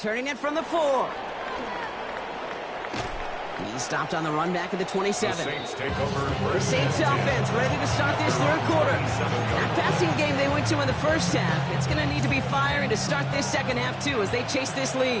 it from the 4. He's stopped on the run back at the 27. The Saints take over. The Saints offense ready to start this 3rd quarter. That passing game they went to in the first half, it's going to need to be firing to start this 2nd half too as they chase this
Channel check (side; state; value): both; identical; correlation 1.00